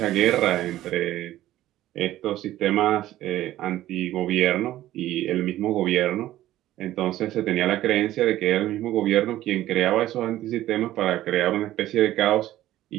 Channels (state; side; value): quieter; left; 14.3 dB